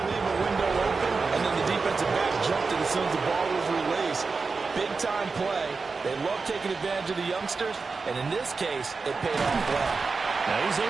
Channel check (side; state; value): left; quieter; 4.4 dB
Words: leave a window open, and then the defensive back jumped it as soon as the ball was released. Big-time play. They love taking advantage of the youngsters, and in this case, it paid off well. Now, he's